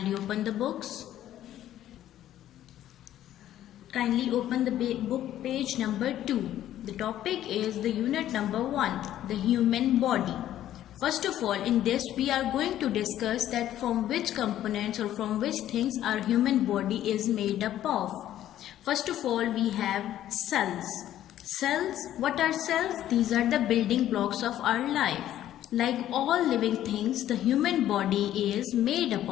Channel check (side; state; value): right; quieter; 12.3 dB